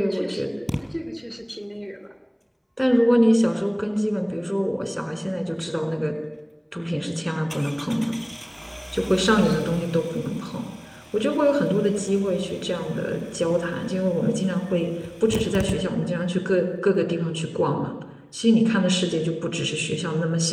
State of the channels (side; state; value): both; identical; correlation 1.00